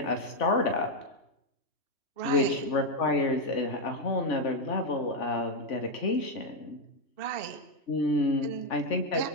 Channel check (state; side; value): late; right; 3.4 ms